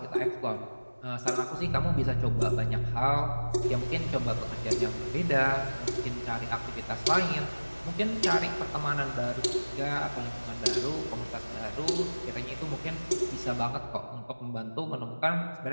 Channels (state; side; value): inverted; both; correlation -1.00